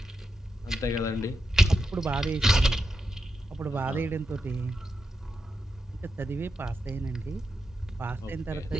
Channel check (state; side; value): normal; both; correlation 0.86